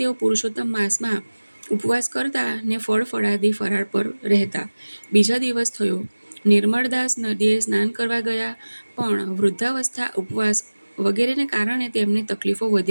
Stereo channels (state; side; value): inverted; both; correlation -1.00